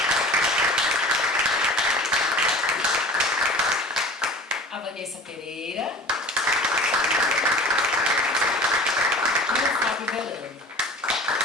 A Vanessa Pereira e o Fábio Velano.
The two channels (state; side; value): normal; both; correlation 0.39